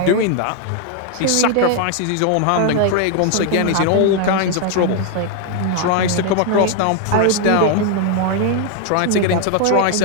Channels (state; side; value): different; both; correlation 0.00